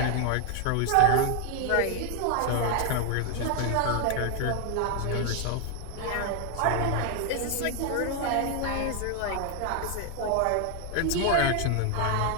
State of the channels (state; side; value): different; both; correlation 0.01